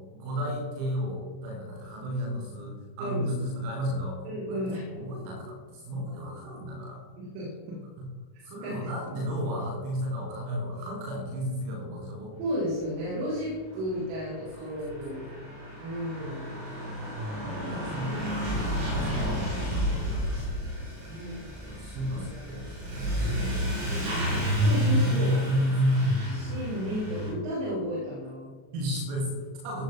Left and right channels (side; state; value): left; late; 37 ms